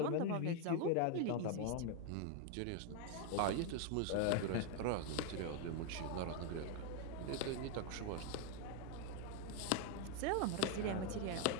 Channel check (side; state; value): both; different; correlation 0.01